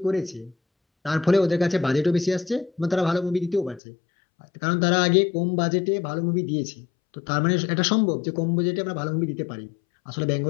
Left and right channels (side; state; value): right; drops out; at 3.8 s